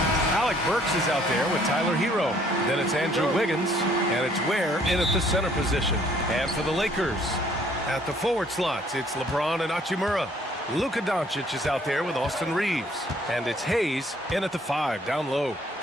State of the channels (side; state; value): both; normal; correlation 0.61